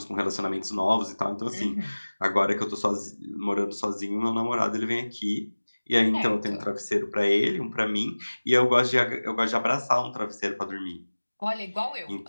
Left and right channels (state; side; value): inverted; both; correlation -1.00